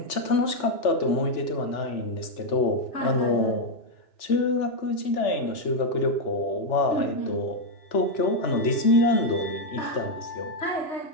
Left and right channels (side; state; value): right; late; 3.4 ms